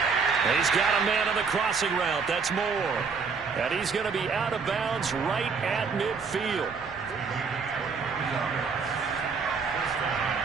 And he's got a man on the crossing route. That's Moore. And he's going to be out of bounds right at midfield.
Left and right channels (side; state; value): left; quieter; 5.3 dB